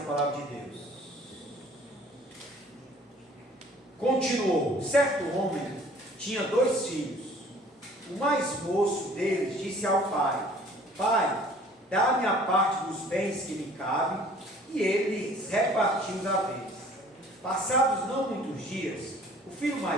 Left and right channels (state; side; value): normal; both; correlation 0.52